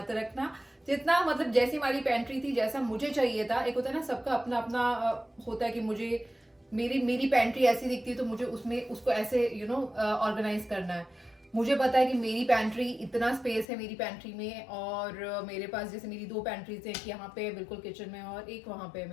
रखना, जितना मतलब जैसी हमारी पेंट्री थी, जैसा मुझे चाहिए था, एक होता है ना सबका अपना अपना होता है कि मुझे मेरी पेंट्री ऐसी दिखती है तो मुझे उसमें उसको ऐसे यू नो ऑर्गेनाइज करना है। मुझे पता है कि मेरी पेंट्री इतना स्पेस है मेरी पेंट्री में, और मेरे पास जैसे मेरी 2 पेंट्रीज है, एक यहाँ पे बिल्कुल किचन में और एक वहाँ पे है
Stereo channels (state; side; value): drops out; right; at 13.7 s